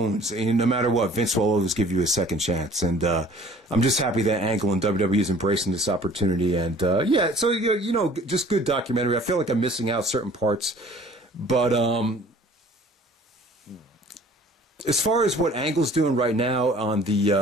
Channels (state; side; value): normal; both; correlation 0.51